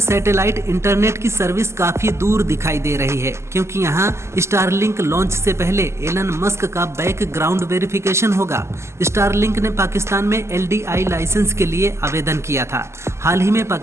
इंटरनेट की सर्विस काफी दूर दिखाई दे रही है, क्योंकि यहां स्टारलिंक लॉन्च से पहले एलन मस्क का बैकग्राउंड वेरिफिकेशन होगा। स्टारलिंक ने पाकिस्तान में LDI लाइसेंस के लिए आवेदन किया था। हाल ही में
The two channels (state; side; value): late; left; 0.13 ms